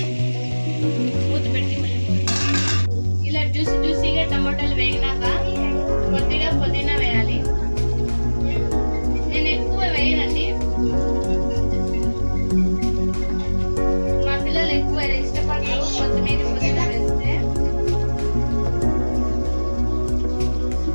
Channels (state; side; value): inverted; both; correlation -1.00